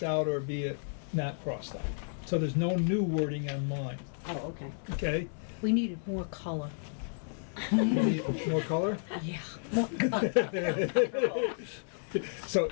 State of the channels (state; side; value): silent; right; digital silence